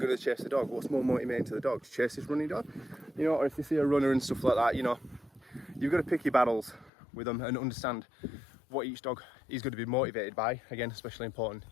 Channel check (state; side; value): drops out; right; at 6.9 s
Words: to chase the dog? What's more motivating to the dog? To chase this running dog? You know, or if they see a runner and stuff like that, you know, you've got to pick your battles with them and understand what each dog is going to be motivated by. Again, especially important